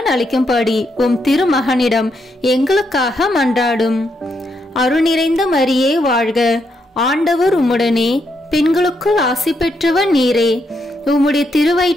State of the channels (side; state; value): both; normal; correlation 0.79